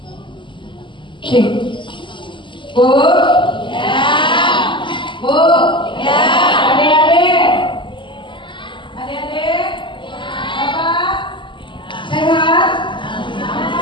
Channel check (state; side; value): late; right; 0.24 ms